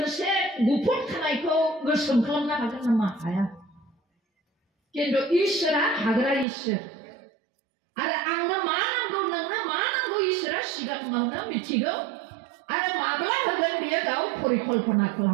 गुफुर खानायखौ गोसोम खालामनो हागोन नामा हाया खिन्थु इसोरा हाग्रा इसोर आरो आंनो मा नांगौ नोंनो मा नांगौ इसोरा सिगाङावनो मिथिगौ आरो माब्ला होगोन बियो गाव परिकल्पना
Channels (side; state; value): left; drops out; at 6.5 s